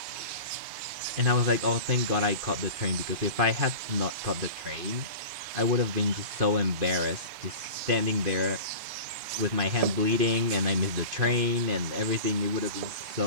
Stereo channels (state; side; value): late; left; 3.1 ms